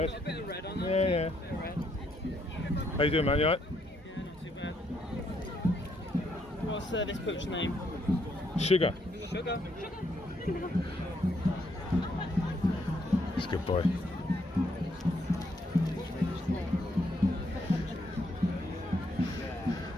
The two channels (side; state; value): both; normal; correlation 0.73